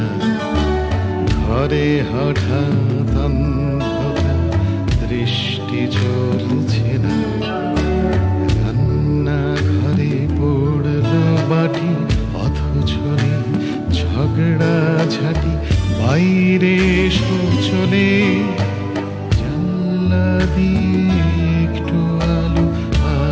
ঘরে হঠাৎ অন্ধকার দৃষ্টি চলছে না রান্না ঘরে পড়ল বাটি অথচ ঝগড়া ঝাঁটি বাইরে শোচনে জানলা দিয়ে একটু আলো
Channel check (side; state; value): both; identical; correlation 1.00